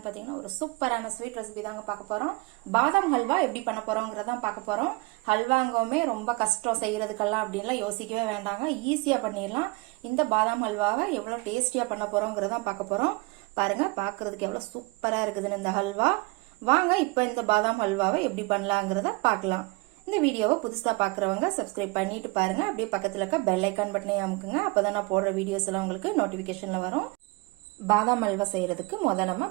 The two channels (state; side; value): quieter; left; 25.4 dB